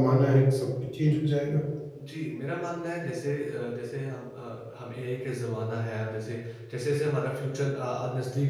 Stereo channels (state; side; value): identical; both; correlation 1.00